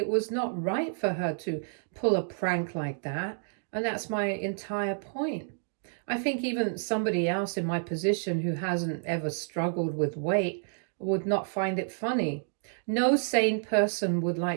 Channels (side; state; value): left; silent; digital silence